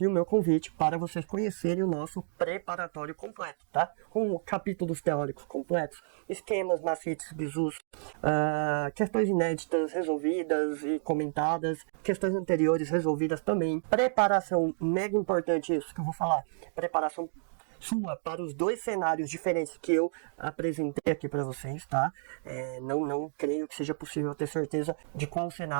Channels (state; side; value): silent; left; digital silence